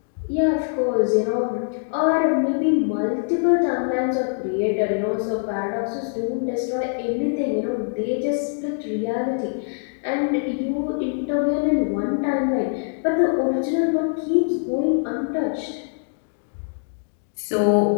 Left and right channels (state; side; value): silent; right; digital silence